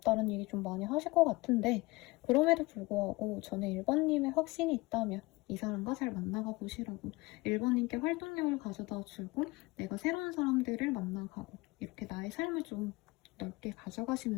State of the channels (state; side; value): quieter; right; 22.6 dB